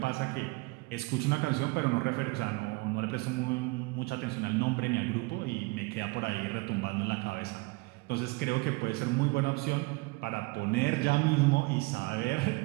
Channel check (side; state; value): left; quieter; 25.6 dB